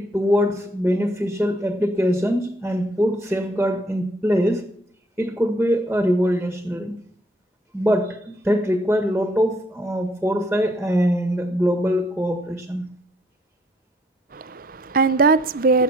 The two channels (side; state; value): both; normal; correlation 0.68